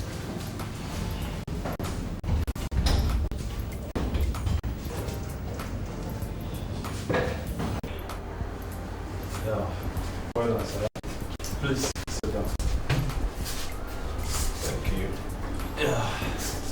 Well done, sir. Please sit down. Thank you.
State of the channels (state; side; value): identical; both; correlation 1.00